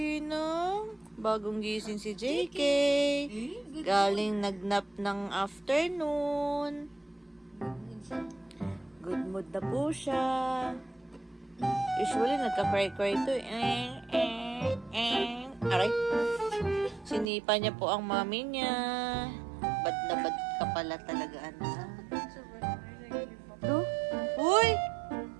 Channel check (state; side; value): drops out; left; at 17.2 s